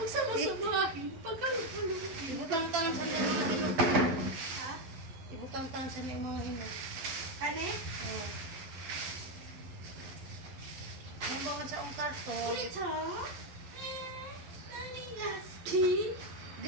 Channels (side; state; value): left; late; 12 ms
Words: sama-samahin, pagkalo-kalo. Ibutang-tang sa mga hinog. Ha? Ibutang-tang sa mga hinog. Kane? Oh. Ano ba nga sa ang karton? Ulit ha? Naling gaskin.